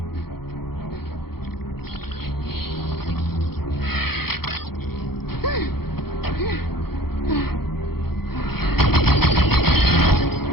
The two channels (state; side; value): late; right; 0.96 ms